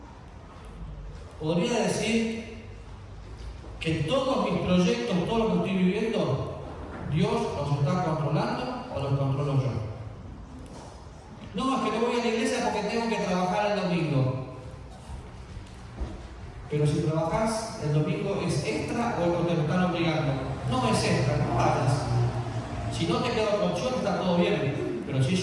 ¿Podría decir que todos mis proyectos, todo lo que estoy viviendo, Dios los está controlando o los controlo yo? No, es que no voy a la iglesia porque tengo que trabajar el domingo. Pero si trabajas el domingo, ¿es extra o te lo están obligando? No es extra, no vayas. Si no te queda otra opción, está todo bien. Pero si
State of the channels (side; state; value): both; identical; correlation 1.00